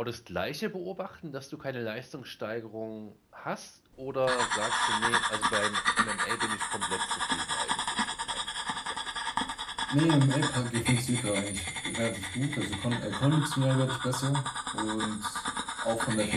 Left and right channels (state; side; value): identical; both; correlation 1.00